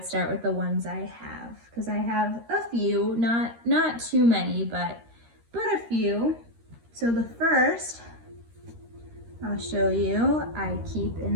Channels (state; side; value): late; left; 13 ms